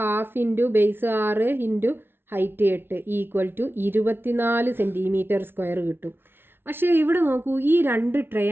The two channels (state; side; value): late; left; 0.11 ms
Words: into base 6 into height 8 equal to 24 centimetre square കിട്ടും. പക്ഷേ ഇവിടെ നോക്കൂ, ഈ 2